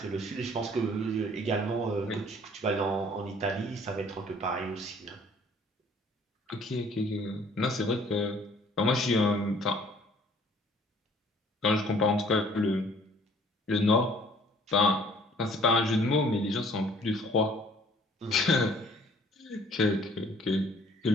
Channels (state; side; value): normal; both; correlation 0.56